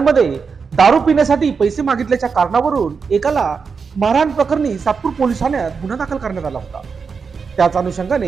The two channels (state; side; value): quieter; left; 5.5 dB